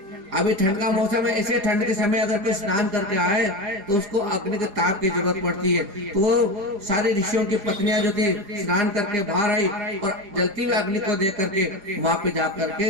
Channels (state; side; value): late; left; 4.9 ms